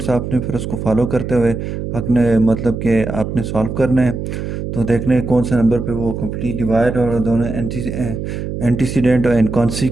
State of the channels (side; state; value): right; noise; hum, 5 dB below the sound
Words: आपने फिर उसको फॉलो करते हुए आपने मतलब कि आपने सॉल्व करना है। तो देखने हैं कौन से नंबर पे वो कंप्लीट डिवाइड और दोनों एंटीसीडेंट और